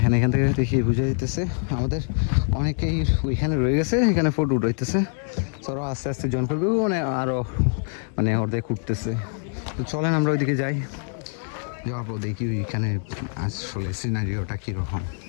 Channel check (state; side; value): silent; right; 56 dB below the other